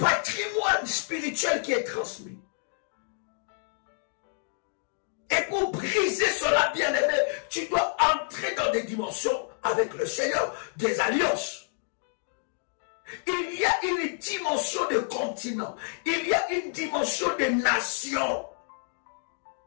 spirituel qui est transmis. Et pour briser cela, bien-aimé, tu dois entrer dans des dimensions avec le Seigneur, des alliances. Il y a une dimension de continent. Il y a une dimension de nation.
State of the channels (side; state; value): right; silent; digital silence